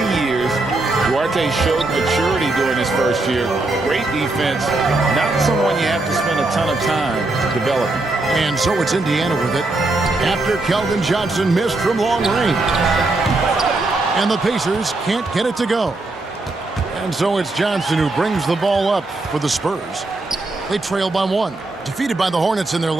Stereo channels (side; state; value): left; quieter; 3.0 dB